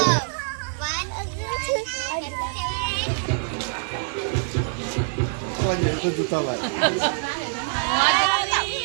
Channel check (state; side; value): silent; left; digital silence